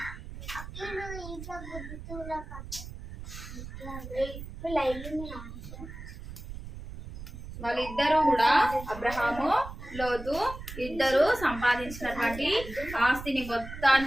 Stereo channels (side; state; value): right; noise; rumble, 11 dB below the sound